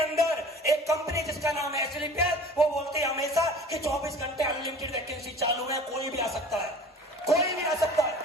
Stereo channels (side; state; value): both; normal; correlation 0.43